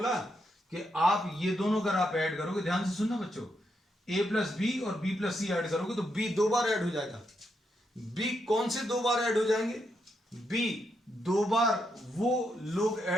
कि आप ये दोनों अगर आप ऐड करोगे, ध्यान से सुनना बच्चों, ए प्लस बी और बी प्लस सी ऐड करोगे तो बी 2 बार ऐड हो जाएगा। बी कौन से 2 बार ऐड हो जाएंगे? बी 2 बार वो लोग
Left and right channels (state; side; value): normal; both; correlation 0.81